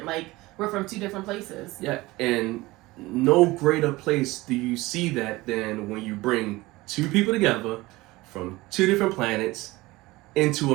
Like we're from two different places. Yeah, and no greater place do you see that than when you bring two people together from two different planets into a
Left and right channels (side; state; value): left; quieter; 20.2 dB